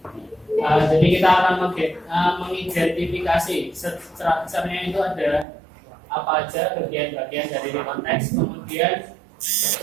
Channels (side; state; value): left; drops out; at 5.5 s